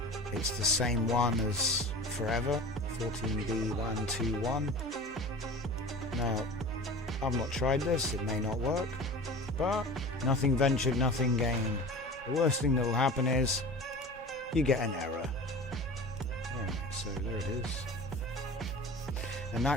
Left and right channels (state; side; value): normal; both; correlation 0.37